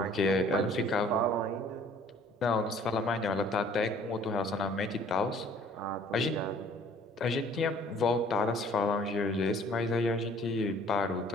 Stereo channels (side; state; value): both; normal; correlation 0.55